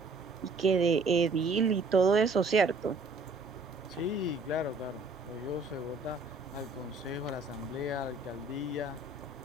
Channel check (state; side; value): quieter; left; 3.4 dB